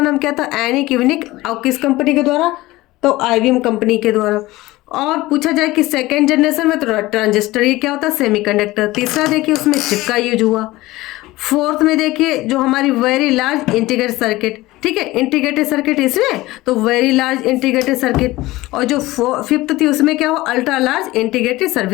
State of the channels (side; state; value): right; quieter; 18.8 dB